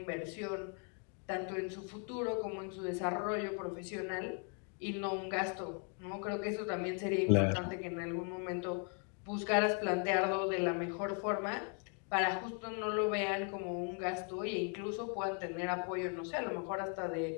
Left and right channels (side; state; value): right; quieter; 39.3 dB